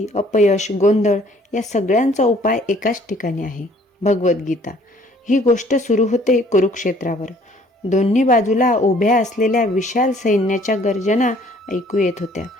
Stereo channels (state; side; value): normal; both; correlation 0.58